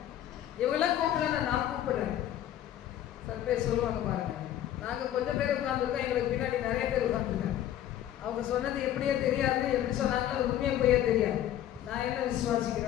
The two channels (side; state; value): right; quieter; 11.8 dB